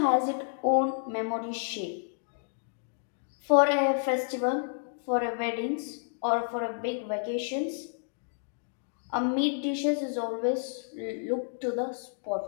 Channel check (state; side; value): silent; right; digital silence